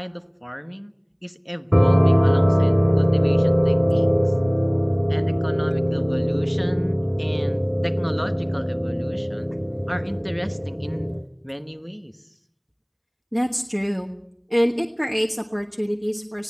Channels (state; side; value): identical; both; correlation 1.00